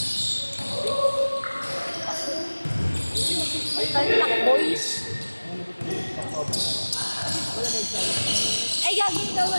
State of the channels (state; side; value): inverted; both; correlation -1.00